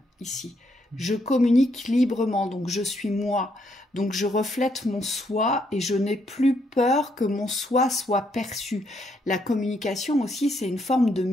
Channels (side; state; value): both; normal; correlation 0.74